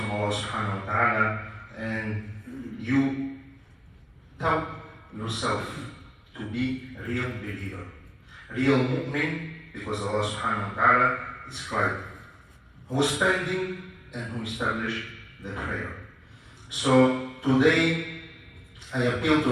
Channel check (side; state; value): both; identical; correlation 1.00